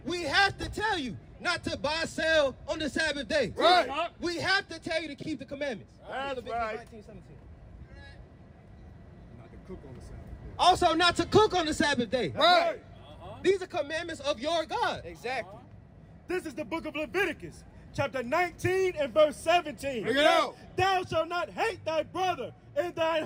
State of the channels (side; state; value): both; identical; correlation 1.00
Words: We have to tell you not to buy, sell on the Sabbath day. Right. We have to tell you to keep the commandments. That's right. 19:17. Not to cook on the Sabbath day. Also not to cook on the Sabbath day. Right. These are commandments of your God. Exactly. This is the book of Leviticus, chapter 19 and verse 17. Bring it out. Thou shalt not hate thy brother in thine